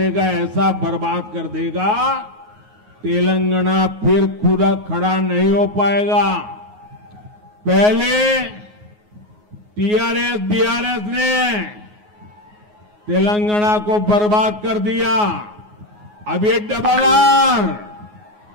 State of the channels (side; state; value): left; late; 9.5 ms